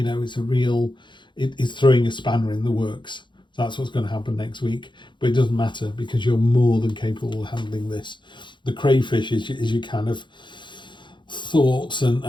know, it's a real, it's throwing a spanner in the works. That's what's going to happen next week. But it doesn't matter because you're more than capable of handling this. The crayfish is your kind of thoughts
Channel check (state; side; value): late; right; 0.23 ms